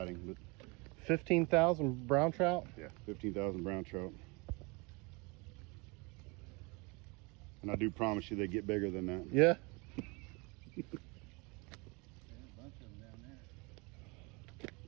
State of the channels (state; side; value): quieter; left; 28.3 dB